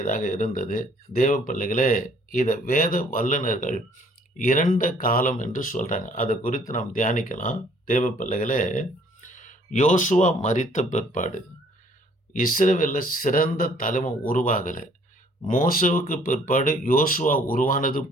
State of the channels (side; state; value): both; normal; correlation 0.60